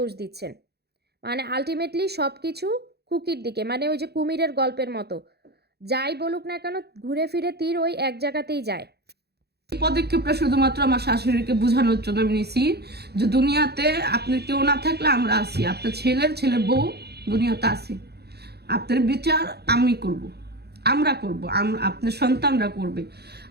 দিচ্ছেন। মানে আলটিমেটলি সব কিছু খুকির দিকে, মানে ওই যে কুমিরের গল্পের মতো, যাই বলুক না কেন ঘুরে ফিরে তীর ওই এক জায়গাতেই যায়। এই পদক্ষেপটা শুধুমাত্র আমার শাশুড়িকে বোঝানোর জন্য আমি নিছি যে দুনিয়াতে আপনার কেউ না থাকলে আমরা আছি, আপনার ছেলে বউ দুনিয়াতে আছি, আপনার বিচার আমি করব, আমরা করব, আপনার সন্তানরা করবে।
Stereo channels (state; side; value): late; left; 0.47 ms